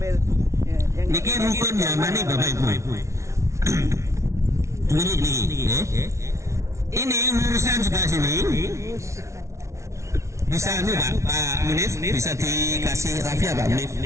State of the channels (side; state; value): left; late; 0.14 ms